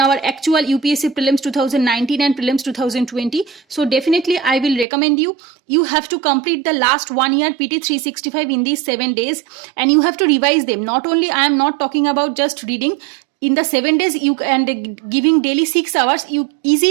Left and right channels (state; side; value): drops out; left; at 4.9 s